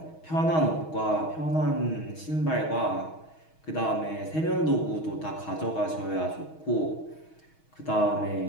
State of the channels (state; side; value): late; right; 6.3 ms